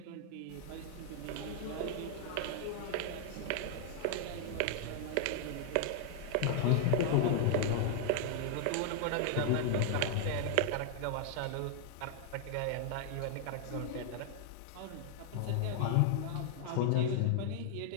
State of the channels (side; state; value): both; different; correlation -0.01